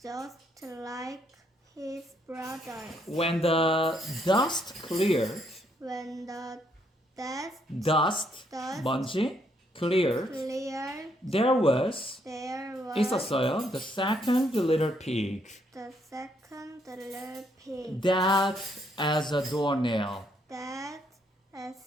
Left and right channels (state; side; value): normal; both; correlation 0.72